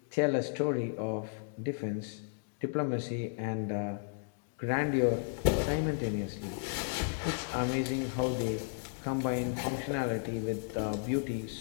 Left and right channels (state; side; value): silent; right; digital silence